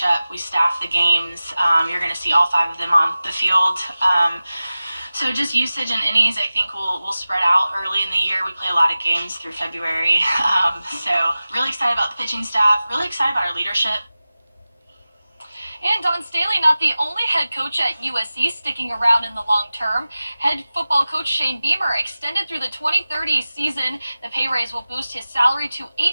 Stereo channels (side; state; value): both; inverted; correlation -0.96